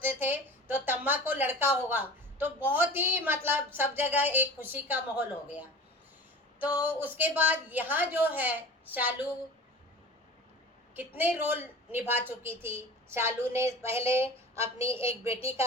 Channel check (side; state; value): both; normal; correlation 0.37